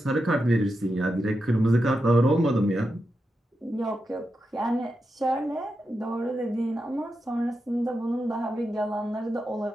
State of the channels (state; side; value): normal; both; correlation 0.88